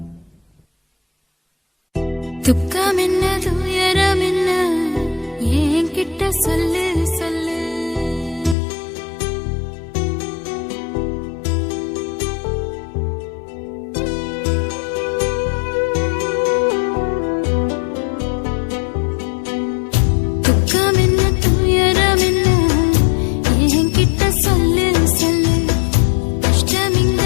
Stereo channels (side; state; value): right; drops out; at 8.6 s